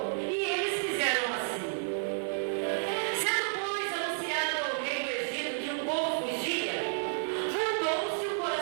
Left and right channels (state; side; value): silent; left; digital silence